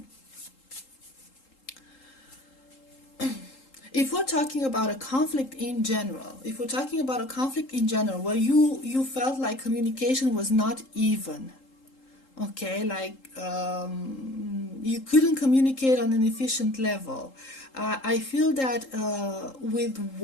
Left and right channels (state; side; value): late; right; 3.8 ms